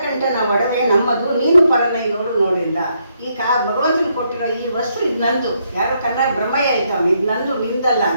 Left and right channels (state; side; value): inverted; both; correlation -0.76